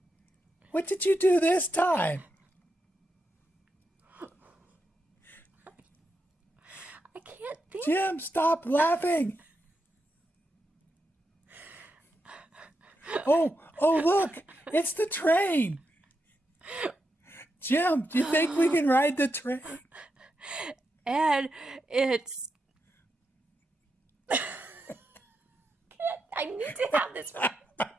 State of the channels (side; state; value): both; normal; correlation 0.85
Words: What did you do this time? I can't think. Jim, stop laughing. Oh, look. It's the train. Jim, do you think we can ride the train? And it's... I need to have this right.